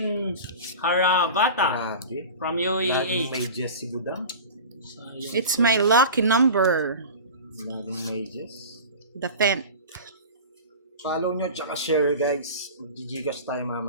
Haravata Grabe. from Laging UAE. may Jess si Budang. Sayang. It's my lucky number. Laging may Jess. The 10th. Follow nyo, tsaka share guys. Mag-gigas tayo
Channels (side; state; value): both; inverted; correlation -0.34